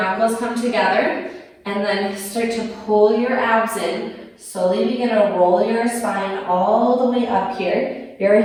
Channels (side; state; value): both; identical; correlation 1.00